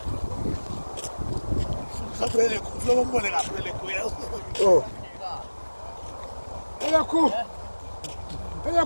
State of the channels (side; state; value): both; inverted; correlation -1.00